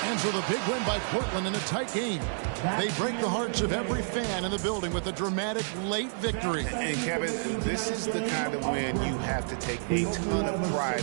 And so the big win by Portland in a tight game. They break the hearts of every fan in the building with a dramatic late victory. And Kevin, this is the kind of win you have to take a ton of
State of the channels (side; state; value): left; silent; digital silence